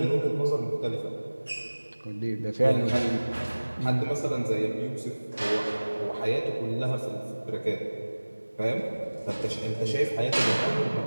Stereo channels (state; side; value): inverted; both; correlation -1.00